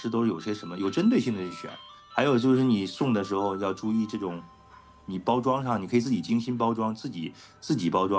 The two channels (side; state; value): both; identical; correlation 1.00